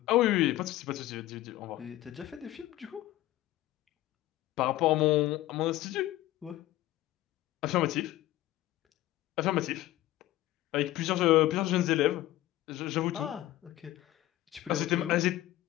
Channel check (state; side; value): quieter; right; 15.6 dB